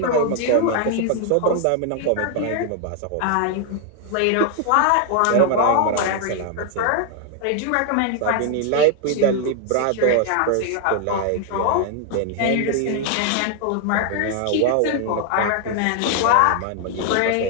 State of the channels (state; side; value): different; both; correlation 0.00